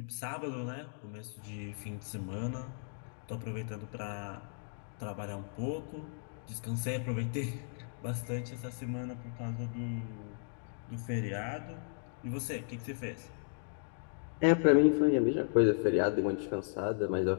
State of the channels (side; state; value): right; silent; digital silence